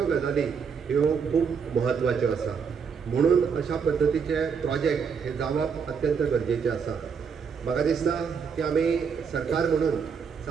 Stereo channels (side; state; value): left; quieter; 6.2 dB